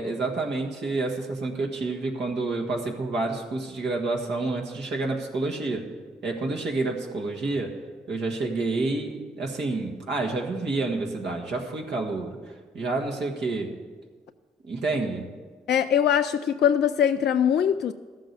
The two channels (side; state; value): both; normal; correlation 0.57